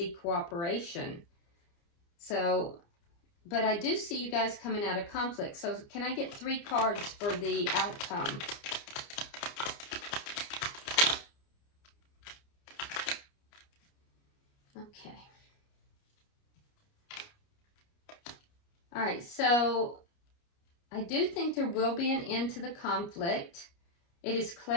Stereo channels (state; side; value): late; right; 29 ms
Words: cooperation. So, but I do see you guys coming out of conflict. So can I get 3 cards for the outcome? Okay. All right, so I do think there will be an end to the conflict. It is